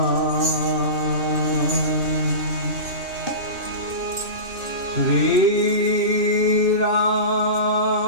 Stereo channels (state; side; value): late; left; 2.6 ms